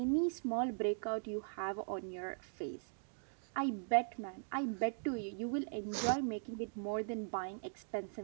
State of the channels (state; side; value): silent; left; digital silence